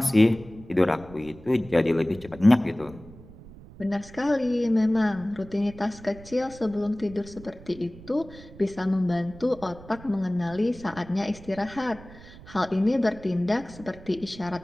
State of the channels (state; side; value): noise; right; rumble, 18 dB below the sound